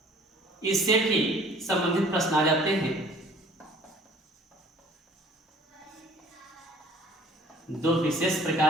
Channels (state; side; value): normal; both; correlation 0.52